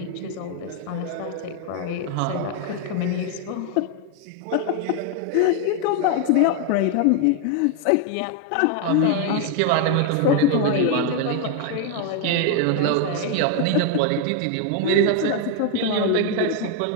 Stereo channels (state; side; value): different; both; correlation 0.01